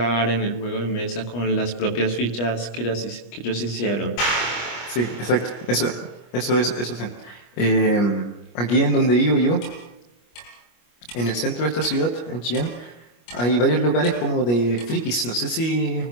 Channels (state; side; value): late; right; 25 ms